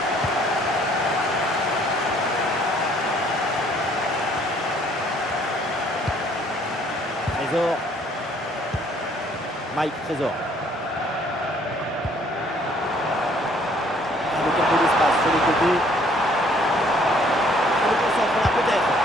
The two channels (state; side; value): normal; both; correlation 0.61